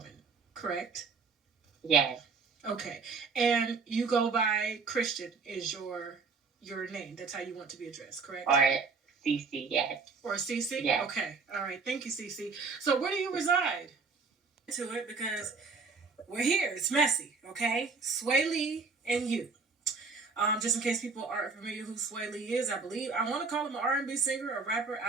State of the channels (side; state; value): left; quieter; 4.6 dB